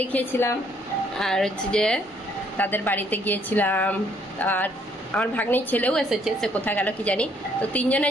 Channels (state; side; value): normal; both; correlation 0.66